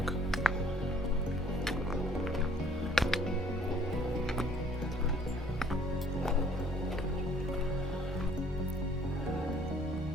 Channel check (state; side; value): normal; both; correlation 0.59